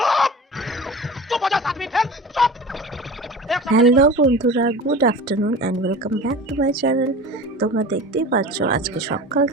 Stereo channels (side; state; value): both; normal; correlation 0.35